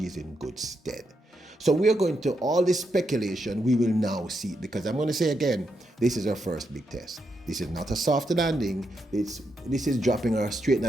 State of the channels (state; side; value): normal; both; correlation 0.82